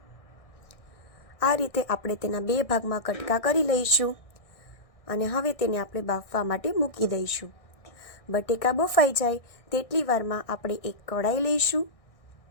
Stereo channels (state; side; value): late; right; 1.6 ms